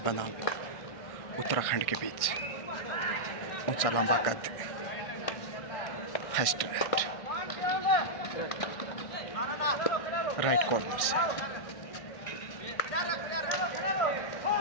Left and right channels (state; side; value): late; right; 1.6 ms